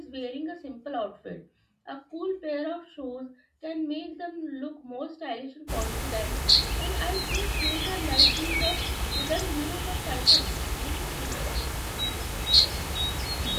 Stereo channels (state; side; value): identical; both; correlation 1.00